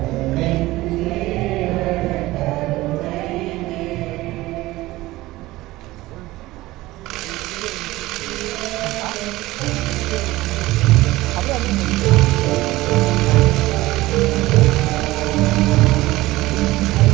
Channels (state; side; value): quieter; left; 18.3 dB